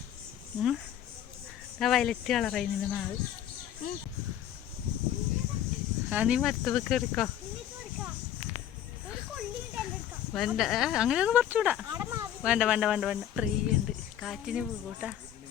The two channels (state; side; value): quieter; right; 10.8 dB